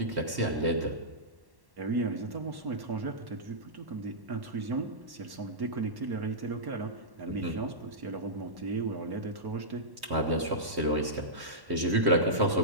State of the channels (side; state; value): left; late; 1.1 ms